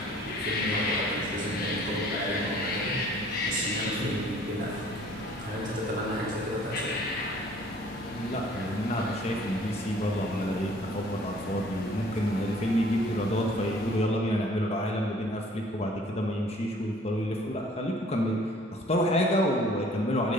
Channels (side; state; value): both; normal; correlation 0.54